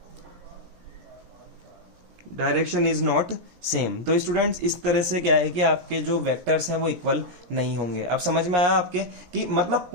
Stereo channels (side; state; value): left; late; 17 ms